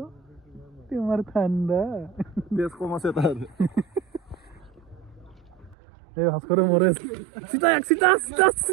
তোমাৰ ঠাণ্ডা তেজ কম আছে তাৰ এই ভাস্কৰে মৰে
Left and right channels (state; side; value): drops out; left; at 5.8 s